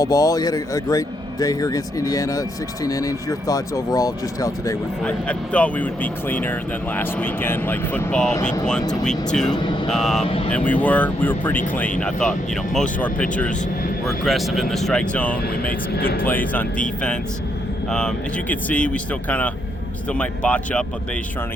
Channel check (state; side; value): normal; both; correlation 0.76